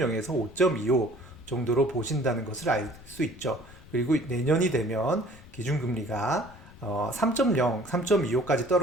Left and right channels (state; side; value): noise; left; rumble, 21 dB below the sound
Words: 5.25 정도로 보신다는 것을 알 수 있죠. 그리고 내년이 되면 기준금리가 3.0, 3.25까지